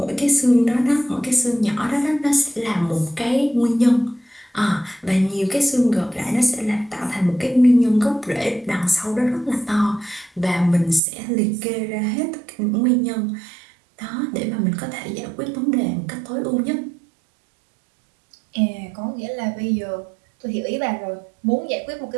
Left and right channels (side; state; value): left; drops out; at 11.0 s